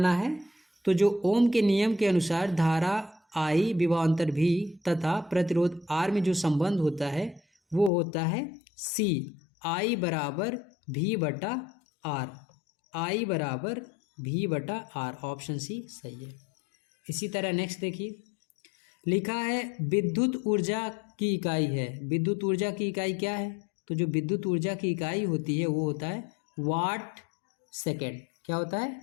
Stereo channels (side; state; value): right; drops out; at 7.9 s